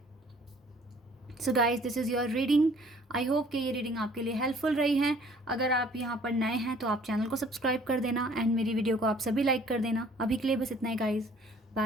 So guys, this is your reading. I hope कि ये रीडिंग आपके लिए हेल्पफुल रही है। अगर आप यहाँ पर नए हैं तो आप चैनल को सब्सक्राइब कर देना एंड मेरी वीडियो को आप सभी लाइक कर देना। अभी के लिए बस इतना ही गाइज,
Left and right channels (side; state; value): both; normal; correlation 0.56